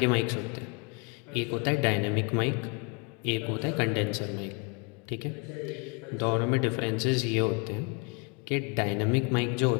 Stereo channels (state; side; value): quieter; right; 32.4 dB